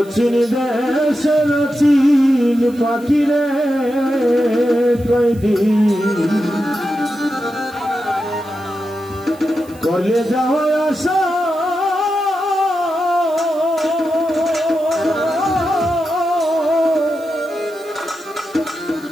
চিন দেশের চিন পাখি রে কয়দিন কলে যাওয়া আসা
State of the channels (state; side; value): noise; right; hiss, 24 dB below the sound